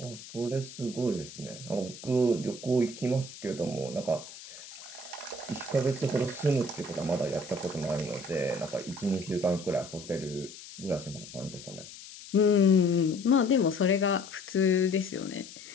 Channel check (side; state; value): left; noise; hiss, 15 dB below the sound